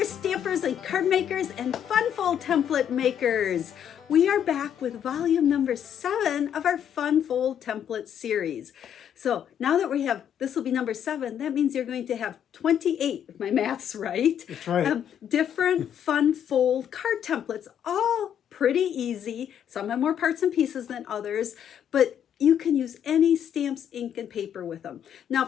stampers and card makers and Funfold template makers. We are back with volume number 7 of our Funfold template series. So now that we have, this will be number 7, that means you're going to have 28, if my math's right. That's right. Different Funfold card templates, all pretty easy. Some have more parts and pieces than others, but you can use any stamps, ink, and paper with them. Now,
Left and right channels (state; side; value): quieter; right; 9.2 dB